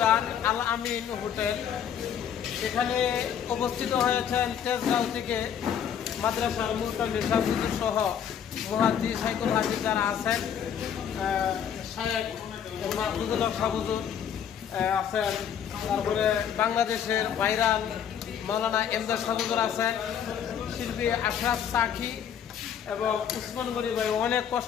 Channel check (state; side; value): quieter; right; 8.6 dB